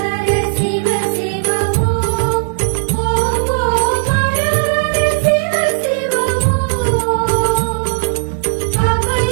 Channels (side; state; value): left; silent; 67 dB below the other